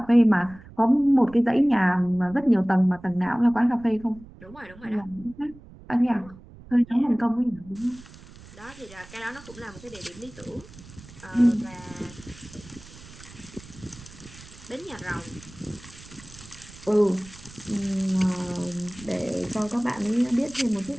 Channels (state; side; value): noise; right; rumble, 19 dB below the sound